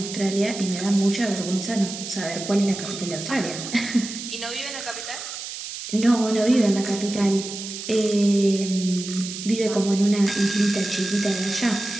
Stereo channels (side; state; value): right; noise; hiss, 9 dB below the sound